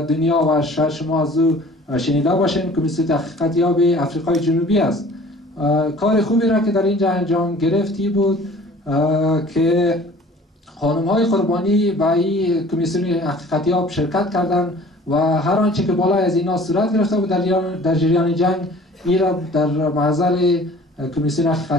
و شاید شما از او شنیده باشین، کمیسیون حقیقتیاب افریقای جنوبی است. کار خوبی را که در اینجا انجام گرفتی بود که خانم‌های قربانی به این کمیسیون حقیقتیاب شرکت کردند و هر آنچه که بالای از اینا صورت گرفته بود در جریان جنگ این را در محضر کمیسیون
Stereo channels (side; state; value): both; normal; correlation 0.48